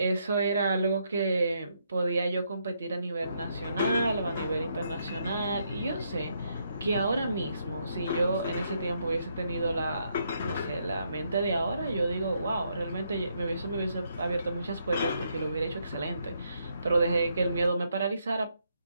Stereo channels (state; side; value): inverted; both; correlation -0.76